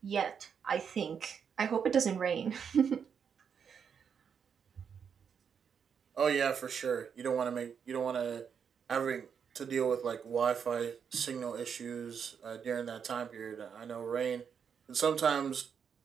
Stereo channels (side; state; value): left; quieter; 7.0 dB